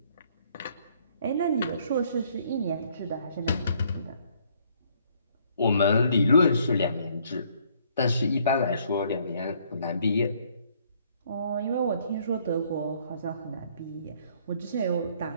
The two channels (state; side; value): inverted; both; correlation -0.64